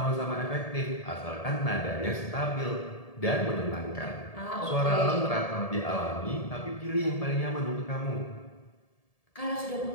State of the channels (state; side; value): late; right; 1.7 ms